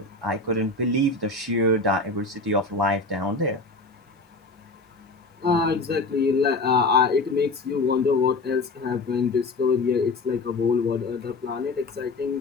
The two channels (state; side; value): quieter; right; 3.4 dB